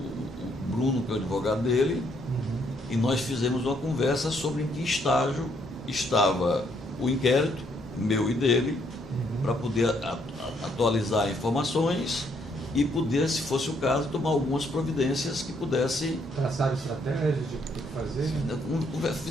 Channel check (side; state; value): both; normal; correlation 0.71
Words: Bruno, que é o advogado dele, e nós fizemos uma conversa sobre em que estágio estava o inquérito, meu e dele, para poder atualizar informações e poder, se fosse o caso, tomar algumas providências que pudessem... Traçar estratégias de o que fazer?